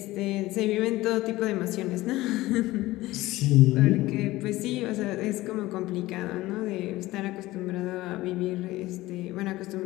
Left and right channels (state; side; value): quieter; right; 18.0 dB